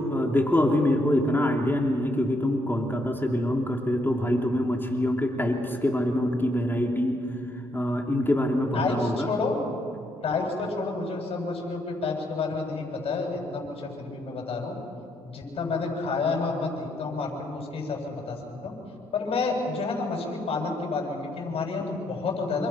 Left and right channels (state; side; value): normal; both; correlation 0.75